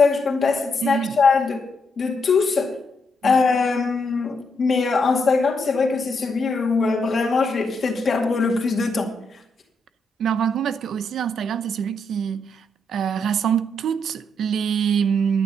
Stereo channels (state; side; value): normal; both; correlation 0.78